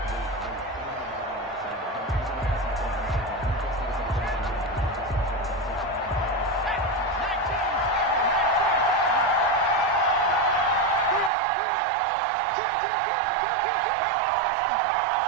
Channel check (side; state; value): left; drops out; at 11.3 s